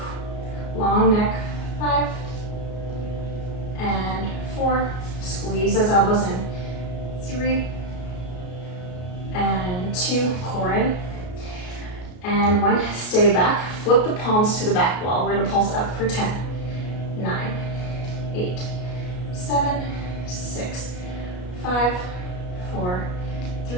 long neck, 5, and 4, squeeze those elbows in, 3, and 2, core in, and 1, stay back, flip the palms to the back wall. We're gonna pulse up for 10, 9, 8, 7, 6, 5, 4,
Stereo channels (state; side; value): late; right; 33 ms